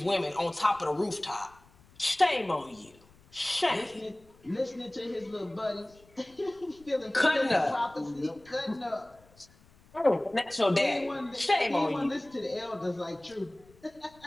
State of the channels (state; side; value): noise; left; rumble, 28 dB below the sound